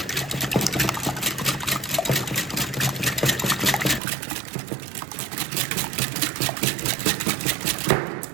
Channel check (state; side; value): drops out; left; at 4.0 s